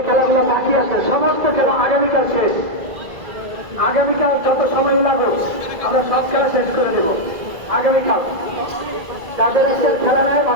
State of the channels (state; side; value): late; left; 2.0 ms